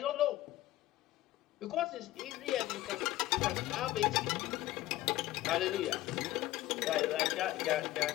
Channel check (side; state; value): right; quieter; 16.0 dB